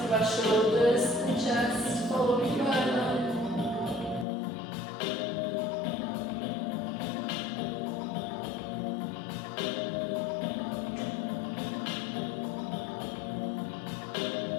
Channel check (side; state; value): right; drops out; at 4.2 s